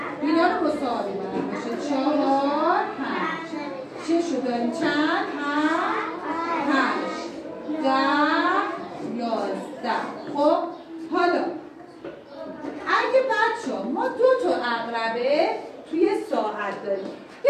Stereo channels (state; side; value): identical; both; correlation 1.00